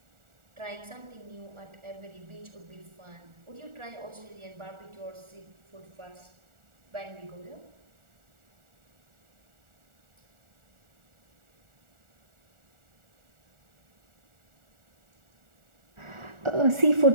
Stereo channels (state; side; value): late; left; 1.4 ms